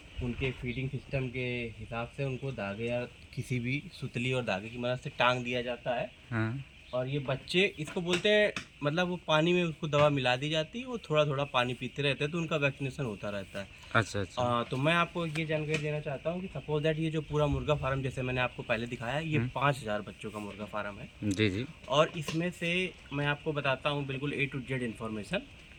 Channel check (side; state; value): both; identical; correlation 1.00